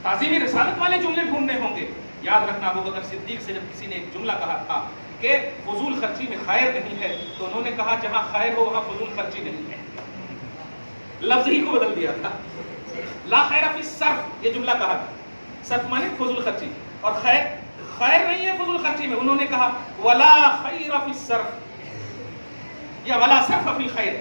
تعظیم رسالت والے جملے ڈھونڈنے ہوں گے. یاد رکھنا ابو بکر صدیق سے جب کسی نے ایک جملہ کہا تھا کہ فضول خرچی میں خیر نہیں ہے، تو انہوں نے کہا جہاں خیر ہو وہاں فضول خرچی نہیں ہے. لفظ ہی کو بدل دیا تھا. لا خیر فی الصرف یہ جملہ کہا تھا، صرف مانے فضول خرچی، اور خیر نہیں ہے فضول خرچی میں. انہوں نے کہا ولا خیر فی الصرف یا ولا صرف فی الخیر،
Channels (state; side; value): inverted; both; correlation -1.00